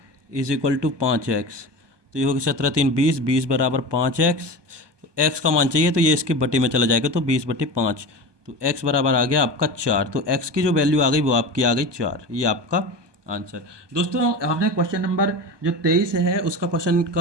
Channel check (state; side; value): late; left; 1.2 ms